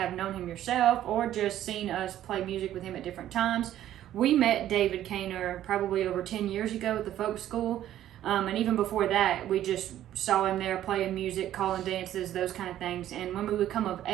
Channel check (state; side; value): quieter; left; 12.3 dB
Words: known him yourself or just seen us play music with him at different times. We met David Kaynor probably over 10 years ago at the folk school. And even before that, we just saw him there playing music, calling dances, those kind of things. And when we would come of